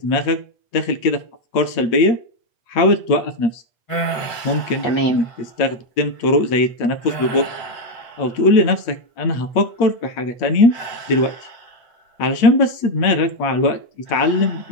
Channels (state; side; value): late; right; 8.6 ms